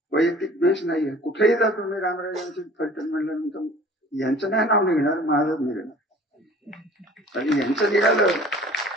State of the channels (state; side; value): normal; both; correlation 0.48